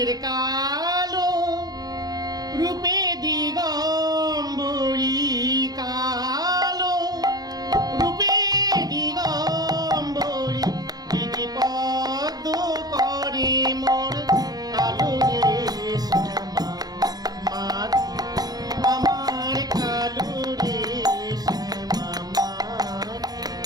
কালো রূপে দিগম্বরী, কালো রূপে দিগম্বরী, দিদি পদ্ম করে মোর কালো রে শ্যামা মা, আমার কালো রে শ্যামা মা,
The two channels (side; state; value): left; late; 0.19 ms